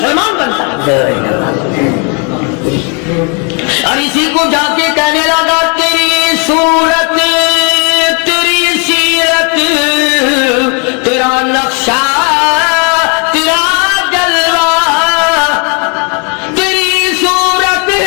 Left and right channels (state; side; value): quieter; right; 36.6 dB